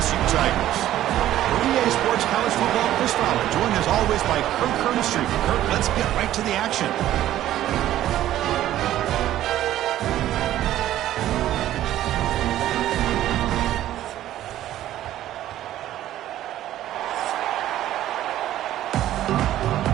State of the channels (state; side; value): quieter; left; 13.1 dB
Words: Tigers. For EA Sports College Football, Chris Fowler, joined as always by Kirk Curtis. Kirk, let's get right to the action.